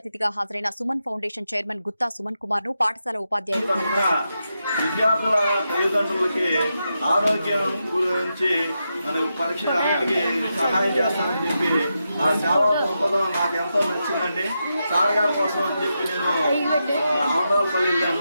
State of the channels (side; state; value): both; inverted; correlation -0.86